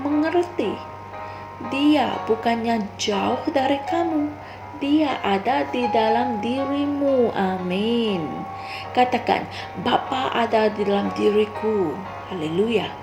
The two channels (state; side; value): identical; both; correlation 1.00